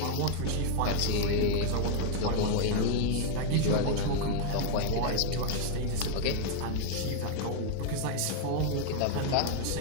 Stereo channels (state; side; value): different; both; correlation 0.00